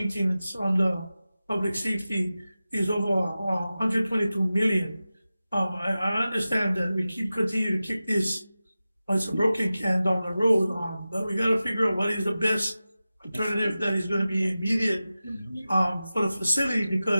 on the public safety is over 122 million. I understand that we continue to kick this as a broken can down the road, but we got to figure out what is the best alternative that is going to be immediate for the facility,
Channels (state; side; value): inverted; both; correlation -0.95